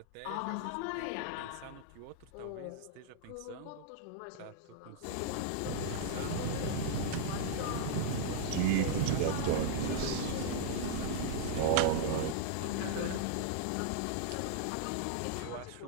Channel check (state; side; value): different; both; correlation -0.01